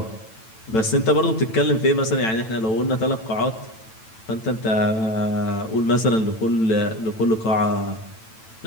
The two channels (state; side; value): late; right; 9.0 ms